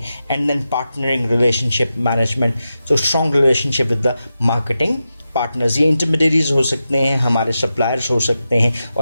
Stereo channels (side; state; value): both; inverted; correlation -0.90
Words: And then partnering relationship management, so strong relationship with the marketing partners. ये इंटरमीडियरीज हो सकते हैं, हमारे सप्लायर्स हो सकते हैं,